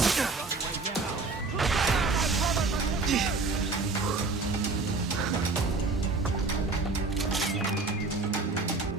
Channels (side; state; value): left; quieter; 3.8 dB